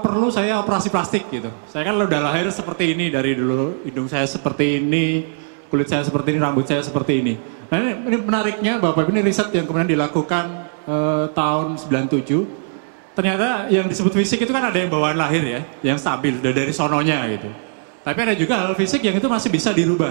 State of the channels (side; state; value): left; silent; digital silence